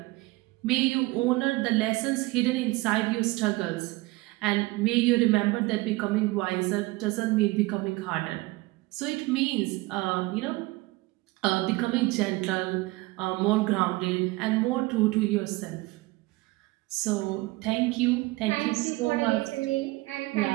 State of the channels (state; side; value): quieter; left; 21.4 dB